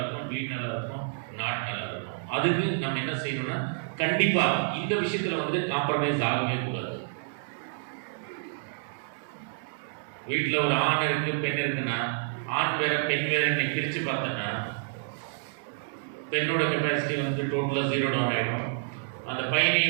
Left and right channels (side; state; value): left; silent; digital silence